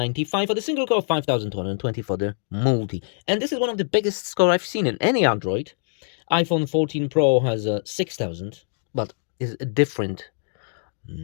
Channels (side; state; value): right; silent; digital silence